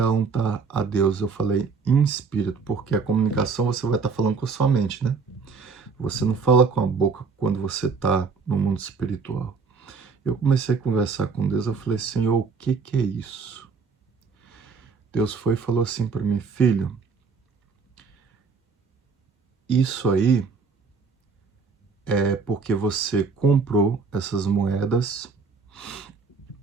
a Deus, eu falei em espírito, porque a comunicação você vai estar falando com a sua mente, né? Você não fala com a boca quando você está no mundo espiritual. Eu comecei a conversar com Deus, eu falei, Senhor, o que é isso? Deus foi e falou assim para mim, filho, isso aí é porque você comprou essas moedas,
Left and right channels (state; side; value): quieter; left; 5.0 dB